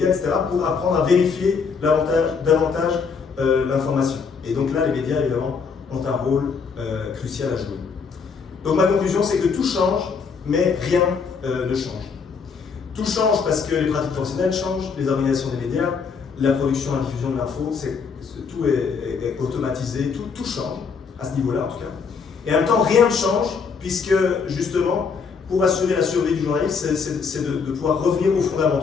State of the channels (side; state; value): right; quieter; 5.6 dB